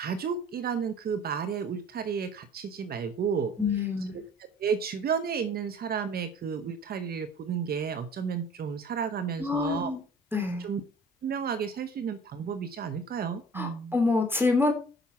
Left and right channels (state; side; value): normal; both; correlation 0.48